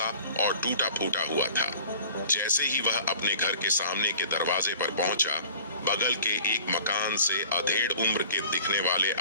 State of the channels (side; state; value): both; inverted; correlation -0.46